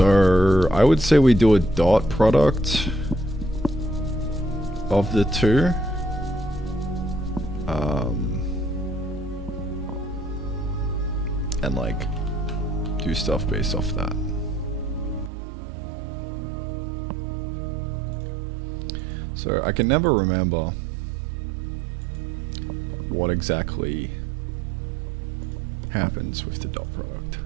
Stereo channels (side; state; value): left; drops out; at 15.3 s